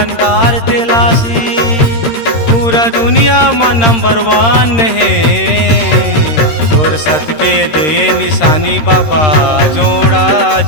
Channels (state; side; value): late; right; 13 ms